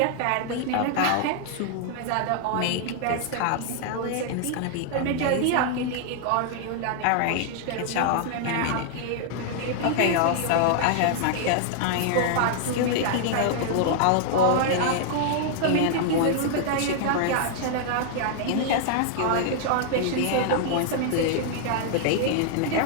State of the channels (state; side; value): different; both; correlation -0.01